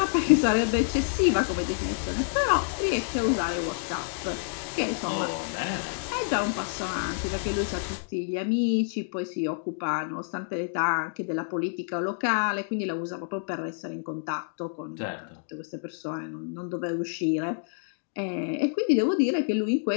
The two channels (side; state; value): right; silent; digital silence